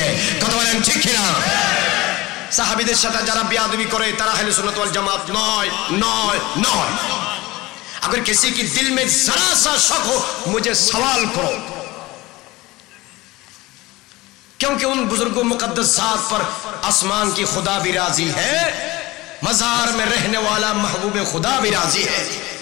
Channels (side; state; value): right; quieter; 20.0 dB